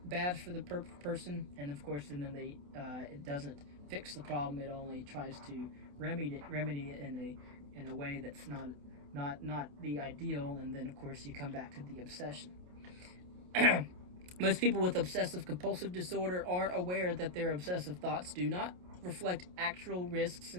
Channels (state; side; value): late; left; 28 ms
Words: bad for the person. And of course, and then it doesn't fix the problem. It only tries to remedy it in a way that's not the ideal. And then of course you come back to the obsession. Most people with obsessive compulsive disorder are aware that their obsessive thoughts do not reflect actual risks